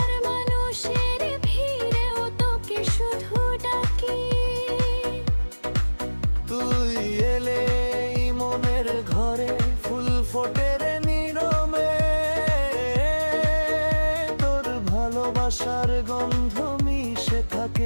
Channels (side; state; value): both; inverted; correlation -1.00